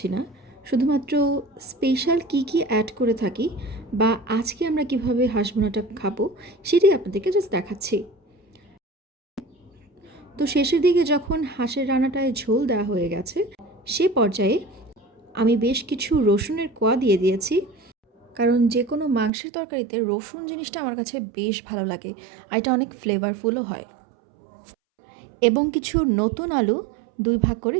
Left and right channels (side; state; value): left; drops out; at 19.3 s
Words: না, শুধুমাত্র স্পেশাল কী কী অ্যাড করে থাকি বা আজকে আমরা কিভাবে হাঁস ভুনাটা খাবো সেটাই আপনাদেরকে জাস্ট দেখাচ্ছি। তো শেষের দিকে যখন হাঁসের রান্নাটায় ঝোল দেওয়া হয়ে গেছে, সে পর্যায়ে আমি বেশ কিছু রসুনের কোয়া দিয়ে দিয়েছি, কারণ যে কোনো মাংসের তরকারিতে রসুন জিনিসটা আমার কাছে বেশ ভালো লাগে আর এটা অনেক ফ্লেভারফুলও হয়। এবং কিছু নতুন আলু 2 ভাগ করে